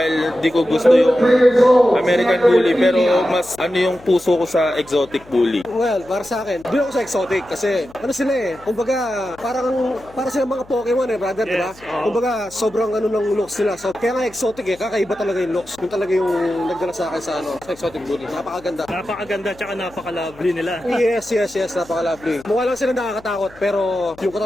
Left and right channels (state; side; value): noise; left; hum, 24 dB below the sound